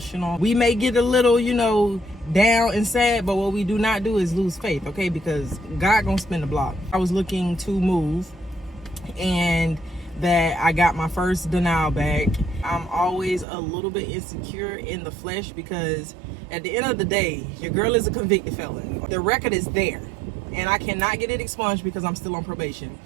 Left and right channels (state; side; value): drops out; left; at 13.5 s